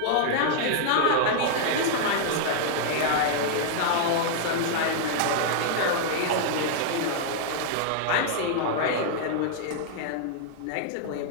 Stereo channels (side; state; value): both; different; correlation -0.01